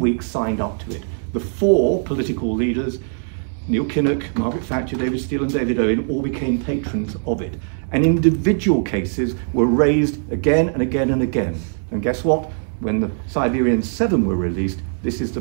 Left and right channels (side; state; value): left; silent; digital silence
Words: signed up to it. The 4 political leaders, Neil Kinnock, Margaret Thatcher, David Steele and David Owen all became patrons of it. And individual cases were raised again and again and again. And guess what? When the Siberian 7 were released, this is the